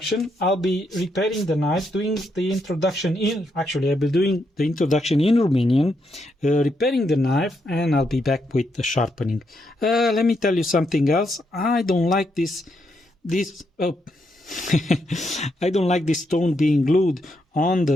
I'll be repairing the knife, doing the introduction in, actually I'll be doing the introduction in Romanian, repairing the knife, and I'll be back with the sharpening. Let me tell you something else. I don't like this I don't like this stone being glued on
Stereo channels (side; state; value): both; normal; correlation 0.79